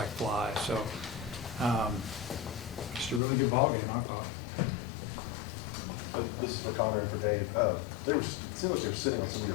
fly. So just a really good ball game, I thought. This is for Connor and for Dave. It seemed like they were sitting on some of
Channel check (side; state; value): right; drops out; at 3.2 s